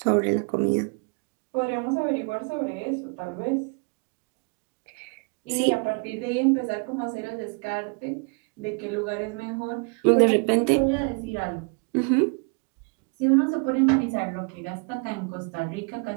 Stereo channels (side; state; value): left; quieter; 34.9 dB